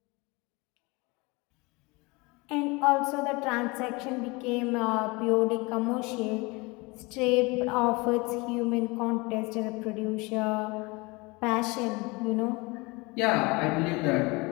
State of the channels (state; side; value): quieter; right; 25.6 dB